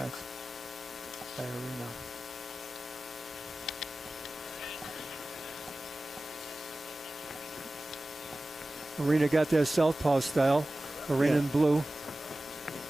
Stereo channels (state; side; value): normal; both; correlation 0.96